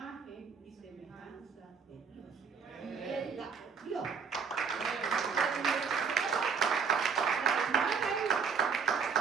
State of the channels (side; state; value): left; quieter; 5.9 dB